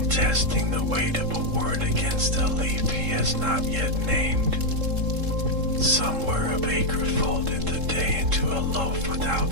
testing the weight of a word against a leaf he has not yet named. Somewhere a baker folded the day into a loaf without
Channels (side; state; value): left; late; 3.7 ms